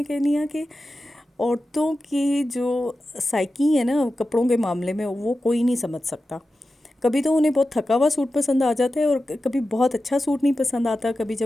कह रही हूँ कि औरतों की जो साइकी है ना कपड़ों के मामले में, वो कोई नहीं समझ सकता। कभी तो उन्हें बहुत थका हुआ सूट पसंद आ जाता है और कभी बहुत अच्छा सूट नहीं पसंद आता। कभी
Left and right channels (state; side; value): normal; both; correlation 0.93